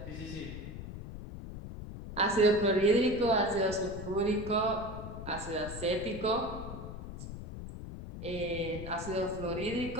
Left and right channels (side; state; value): left; noise; rumble, 10 dB below the sound